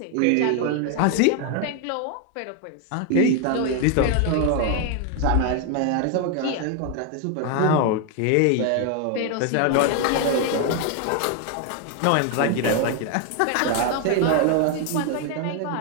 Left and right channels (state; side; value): different; both; correlation 0.01